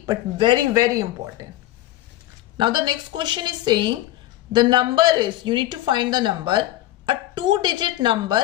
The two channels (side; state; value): right; quieter; 15.2 dB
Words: but very, very important. Now the next question is saying the number is, you need to find the number, a 2-digit